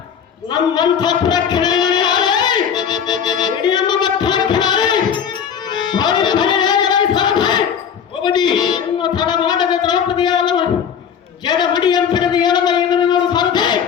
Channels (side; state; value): right; quieter; 7.8 dB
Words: ನಮ್ಮಂಥ ಪ್ರಕ್ಷಣೆ ತಡ ಮಾಡದ ದ್ರೌಪದಿಯಾದ ಜಡ ಮಡಿಯಂತಿರದು ಹೇಳದ ಇದನ್ನು ಸಾರದೆ